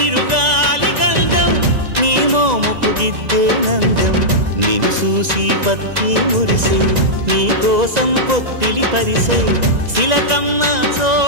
గంధం నీ మోముకు దిద్దే నందం నిన్ను చూసి పత్తి మురిసే నీ కోసం పొత్తిలి పరిసే శిలకమ్మ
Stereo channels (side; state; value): left; late; 1.9 ms